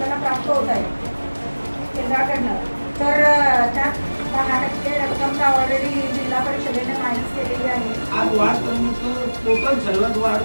प्राप्त होत आहे केंद्राकडनं, तर त्यात 10% रक्कम ऑलरेडी जिल्हा परिषदेने माहिती केलेली आहे. आज वाढ टोटल सर्वात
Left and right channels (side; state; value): both; inverted; correlation -1.00